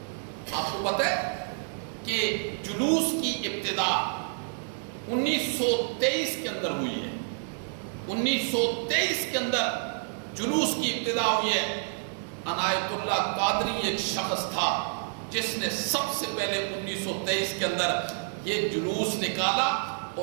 آپ کو پتہ ہے کہ جلوس کی ابتدا 1923 کے اندر ہوئی ہے۔ 1923 کے اندر جلوس کی ابتدا ہوئی ہے۔ عنایت اللہ قادری ایک شخص تھا جس نے سب سے پہلے 1923 کے اندر یہ جلوس نکالا،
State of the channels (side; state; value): left; silent; digital silence